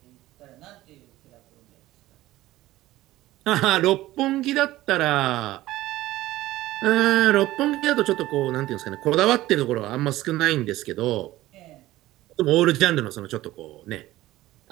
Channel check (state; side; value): quieter; left; 16.4 dB